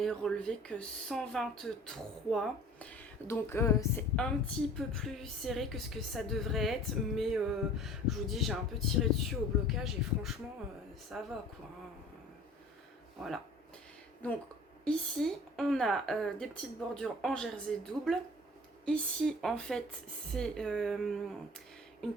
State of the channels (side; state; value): both; normal; correlation 0.46